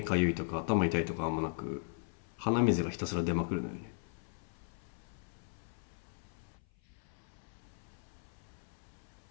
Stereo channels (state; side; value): silent; right; 53 dB below the other